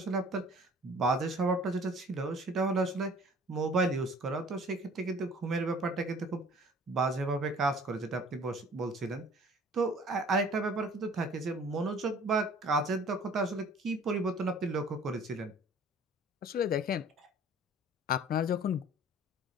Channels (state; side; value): normal; both; correlation 0.50